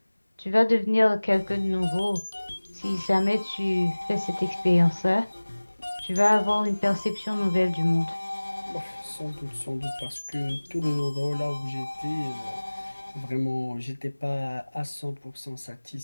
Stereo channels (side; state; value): both; inverted; correlation -1.00